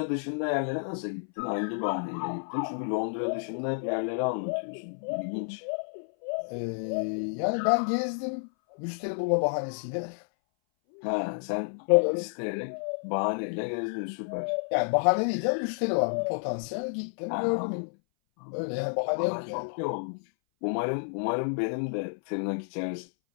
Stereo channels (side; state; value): right; silent; 58 dB below the other